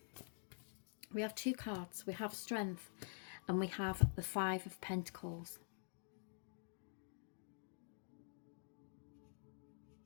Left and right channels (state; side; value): silent; right; digital silence